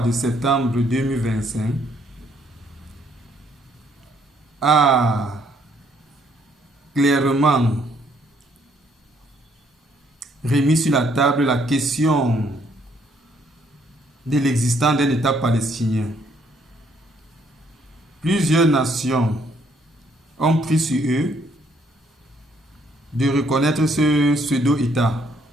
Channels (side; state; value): both; normal; correlation 0.68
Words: de septembre 2025 a clairement remis sur la table la question de l'existence d'un État palestinien. Plusieurs nations ont pris sur eux de reconnaître ce pseudo-État.